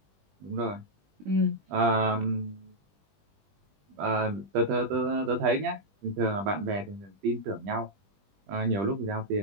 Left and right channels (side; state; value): left; late; 20 ms